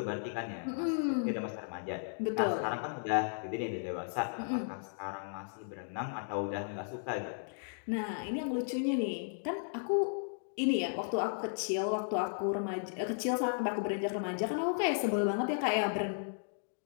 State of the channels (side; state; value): right; silent; digital silence